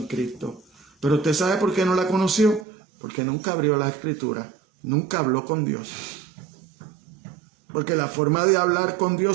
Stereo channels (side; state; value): left; drops out; at 2.7 s